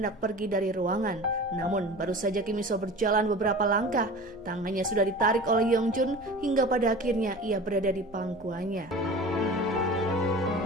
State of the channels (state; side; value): noise; left; hum, 27 dB below the sound